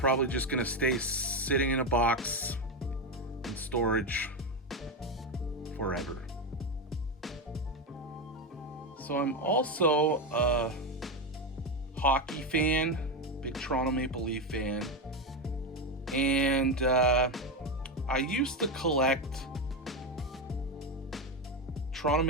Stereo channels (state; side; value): normal; both; correlation 0.12